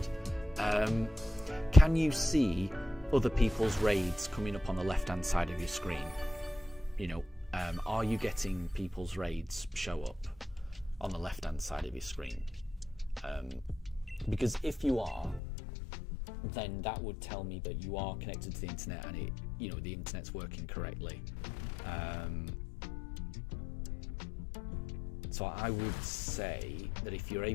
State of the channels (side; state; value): right; drops out; at 15.4 s